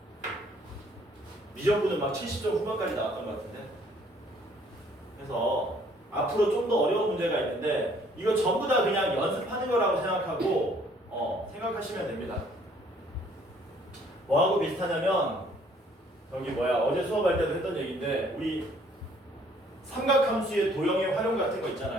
미적분은 막 70점 후반까지 나왔던 것 같은데. 그래서 앞으로 좀 더 어려운 문제가 있는데 이거 전부 다 그냥 연습하는 거라고 생각하고 생각하시면 됩니다. 뭐하고 비슷하냐면 어제 수업할 때도 했던 얘기인데 우리 삼각함수의 도형의 활용 같은 거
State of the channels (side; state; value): both; normal; correlation 0.61